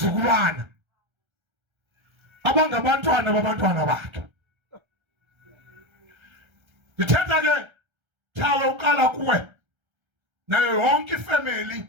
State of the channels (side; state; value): left; late; 1.3 ms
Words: abangabantwana babantwana bakhe. Ndithetha ke thawe uqala kuwe nayo yonke